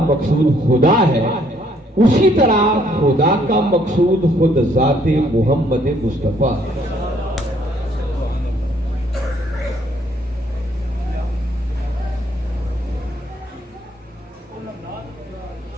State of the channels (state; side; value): normal; both; correlation 0.66